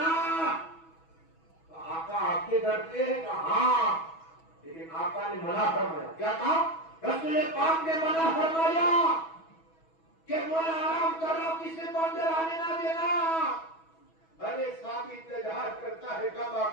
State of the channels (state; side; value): late; right; 6.2 ms